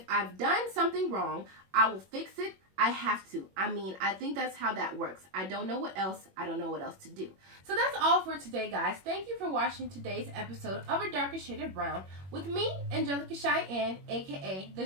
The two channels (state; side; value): late; left; 21 ms